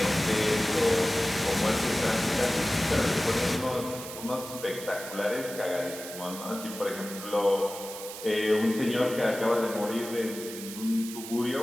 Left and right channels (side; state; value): right; noise; hiss, 11 dB below the sound